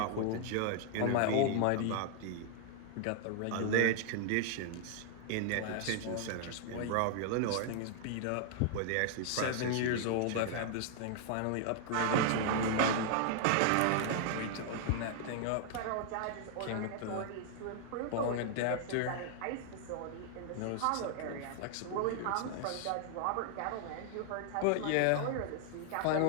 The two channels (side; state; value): both; different; correlation 0.00